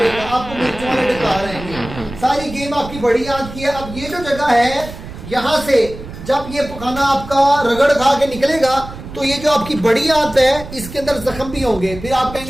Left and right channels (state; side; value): noise; right; rumble, 13 dB below the sound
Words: आपको मिर्च वाले डकार रहेंगे। सारी गेम आपकी बड़ी आंत की है। अब ये जो जगह है, यहाँ से जब ये पखाना आपका रगड़ खा के निकलेगा तो ये जो आपकी बड़ी आंत है इसके अंदर जख्म भी होंगे, फिर आप